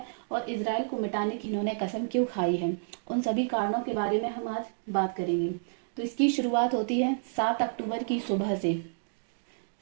और इसराइल को मिटाने की इन्होंने कसम क्यों खाई है, उन सभी कारणों के बारे में हम आज बात करेंगे। तो इसकी शुरुआत होती है 7 अक्टूबर की सुबह से।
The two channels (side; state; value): left; silent; digital silence